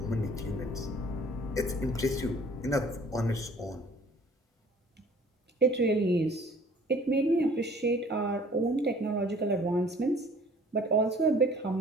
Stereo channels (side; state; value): both; normal; correlation 0.52